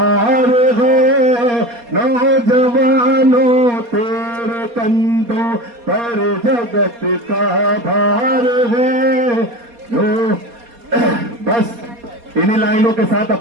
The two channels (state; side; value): late; left; 4.2 ms